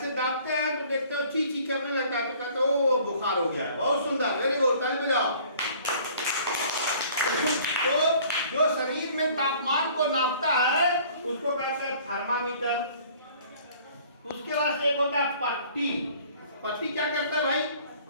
दाबते हैं तो देखते हो ची ची करने लगता है तो कहते हो बुखार हो गया। बहुत सुंदर, वेरी गुड, ताली बजाओ। तो जो शरीर में तापमान को नापता है उसको कहते हैं थर्मामीटर। उसके बाद से एक होता है पट्टी। पट्टी क्या करता है भाई?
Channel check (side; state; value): both; inverted; correlation -0.53